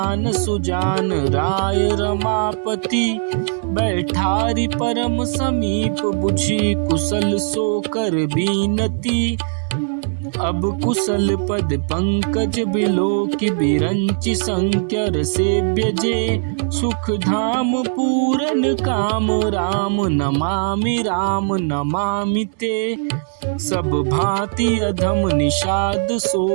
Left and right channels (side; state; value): left; silent; digital silence